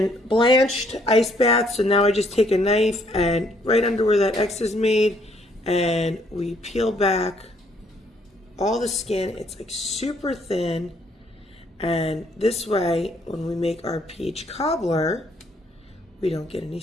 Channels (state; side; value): normal; both; correlation 0.67